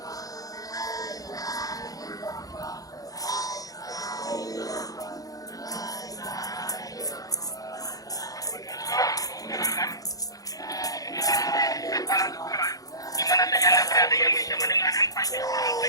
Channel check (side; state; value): right; late; 0.17 ms